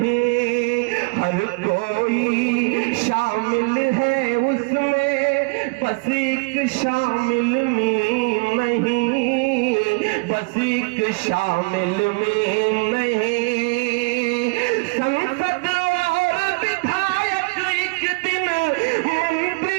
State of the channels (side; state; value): left; quieter; 30.3 dB